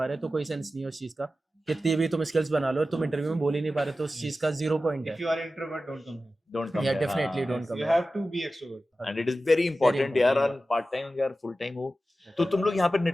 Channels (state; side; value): normal; both; correlation 0.94